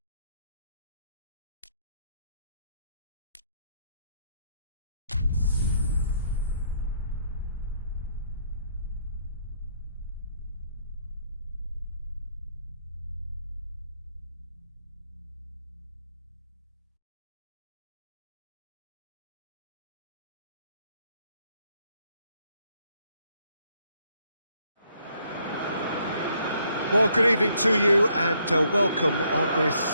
Well, good evening to you and welcome on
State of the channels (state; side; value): inverted; both; correlation -0.70